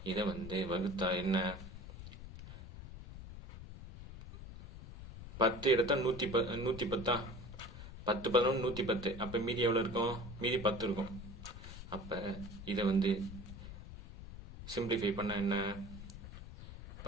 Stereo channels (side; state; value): left; noise; rumble, 12 dB below the sound